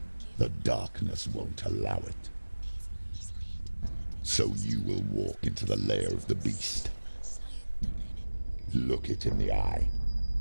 The darkness won't allow it. So you will walk into the lair of the beast. Look it in the eye,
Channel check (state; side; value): inverted; both; correlation -1.00